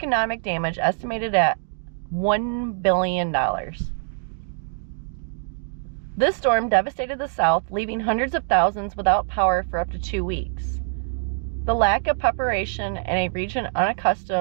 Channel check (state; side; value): silent; left; digital silence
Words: damage estimated at $1 billion. This storm devastated the South, leaving hundreds of thousands without power for up to 2 weeks. The lack of preparation in a region